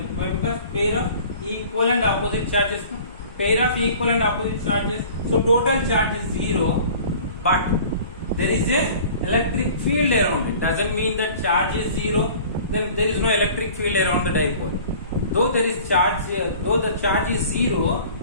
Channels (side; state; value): both; inverted; correlation -0.46